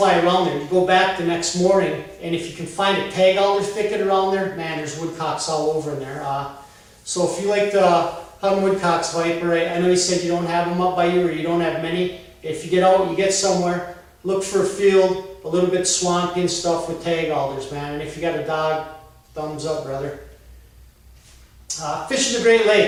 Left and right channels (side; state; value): both; identical; correlation 1.00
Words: around there. You go back the next morning, and if you can find a tag alder thicket around there, man, there's woodcocks all over in there. So if you like to hunt woodcocks, Viper, I know you said you don't have them up by you, or you don't have many. If you get out, you get somewhere, look for a field, a little bit swampy and stuff with tag alders, man. And if you got a dog, thumbs up, brother. Fishing the Great